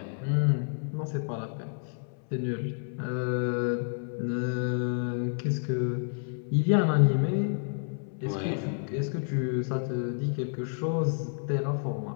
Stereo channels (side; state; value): right; silent; 58 dB below the other